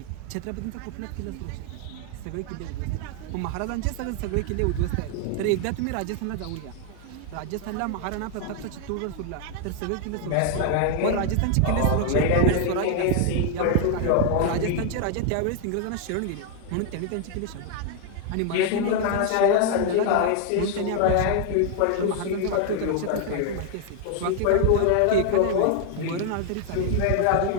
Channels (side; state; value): both; different; correlation 0.00